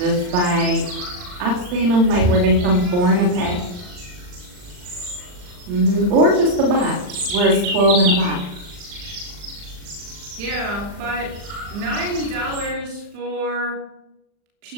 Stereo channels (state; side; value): late; left; 39 ms